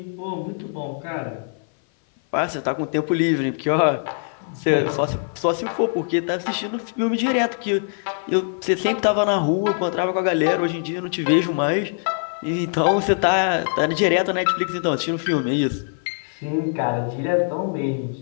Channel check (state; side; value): silent; right; 57 dB below the other